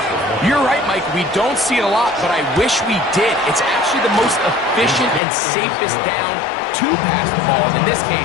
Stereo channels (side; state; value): right; drops out; at 5.2 s